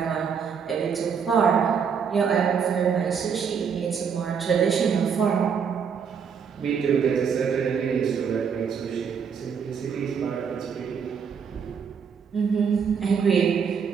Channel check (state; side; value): quieter; left; 6.7 dB